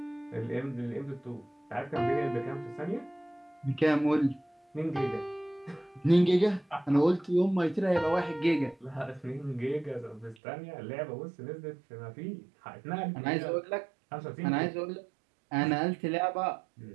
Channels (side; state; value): left; drops out; at 10.4 s